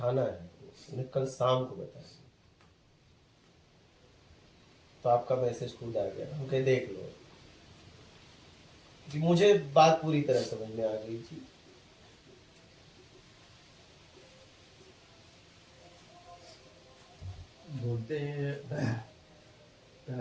है, उन्हें कल शाम को बताएंगे। तो आपका मैसेज खुद आ गया, हम कहे देख लो, कि मुझे बात पूरी तरह समझ में आ गई थी। बोलते हैं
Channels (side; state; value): both; identical; correlation 1.00